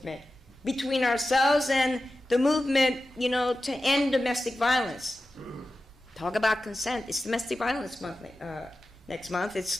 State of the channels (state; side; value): normal; both; correlation 0.93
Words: between ourselves and the movement, to end domestic violence. Talk about consent. It's Domestic Violence Month next month.